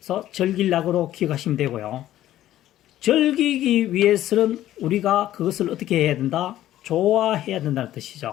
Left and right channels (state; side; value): quieter; right; 13.4 dB